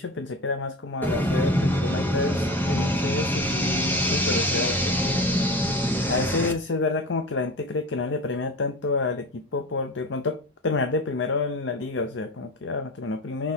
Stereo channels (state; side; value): normal; both; correlation 0.30